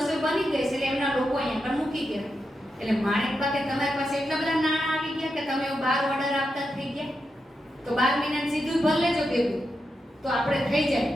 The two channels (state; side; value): normal; both; correlation 0.87